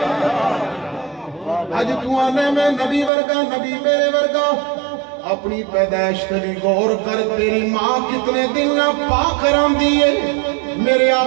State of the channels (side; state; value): left; drops out; at 3.1 s